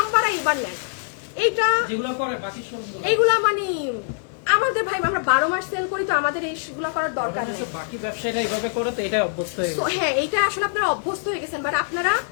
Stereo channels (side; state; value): right; silent; digital silence